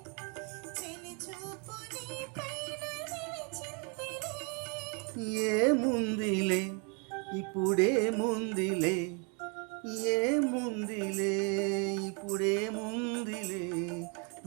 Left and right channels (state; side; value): quieter; left; 35.7 dB